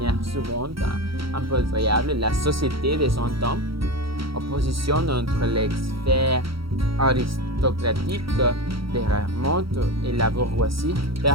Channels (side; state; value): left; late; 0.75 ms